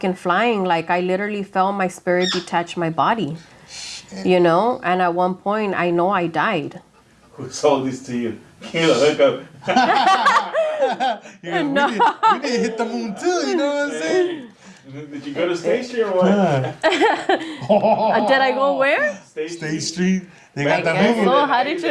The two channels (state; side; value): identical; both; correlation 1.00